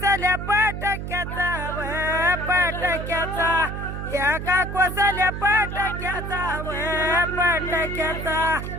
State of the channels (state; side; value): noise; right; hum, 6 dB below the sound